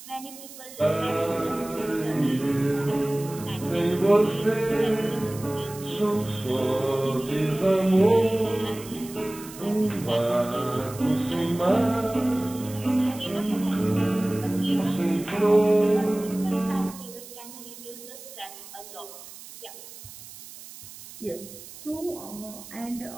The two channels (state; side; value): noise; right; hiss, 16 dB below the sound